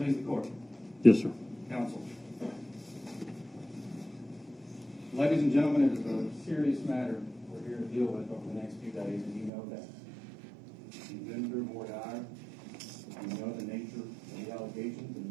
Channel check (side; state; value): left; drops out; at 9.5 s